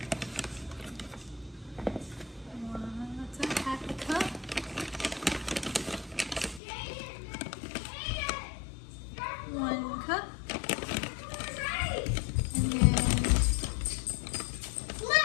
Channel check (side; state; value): right; drops out; at 6.6 s